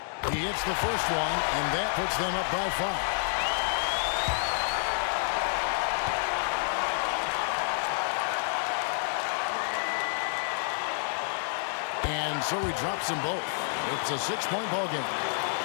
He hits the first one, and that puts them up by 5. And so he drops them both. It's a 6-point ball game.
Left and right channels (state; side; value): silent; right; digital silence